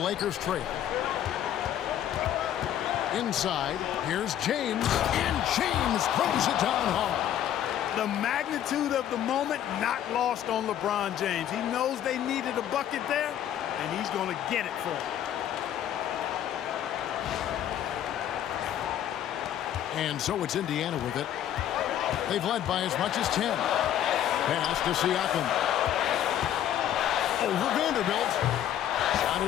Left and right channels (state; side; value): quieter; right; 10.9 dB